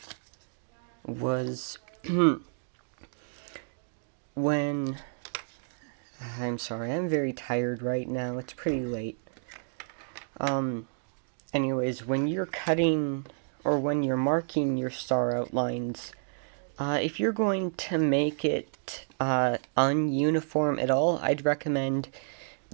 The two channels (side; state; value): left; silent; digital silence